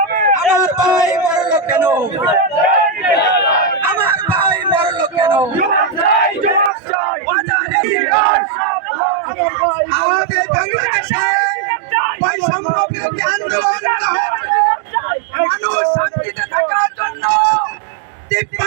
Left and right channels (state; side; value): drops out; left; at 6.7 s